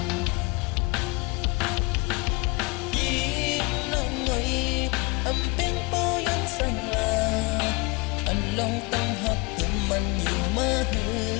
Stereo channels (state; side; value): quieter; right; 26.7 dB